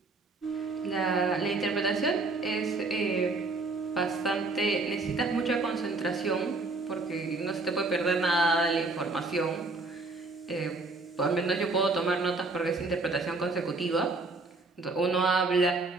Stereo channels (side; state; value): left; quieter; 3.4 dB